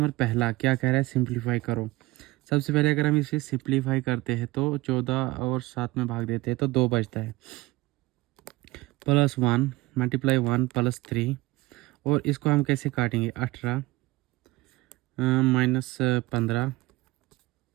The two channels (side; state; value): left; quieter; 20.2 dB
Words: पहला क्या कह रहा है, सिंप्लीफाई करो। सबसे पहले अगर हम इसे सिंप्लीफाई करते हैं तो 14 और 7 में भाग देते हैं तो 2 बचता है। +1 मल्टीप्लाई 1 +3, और इसको हम कैसे काटेंगे? 18 -15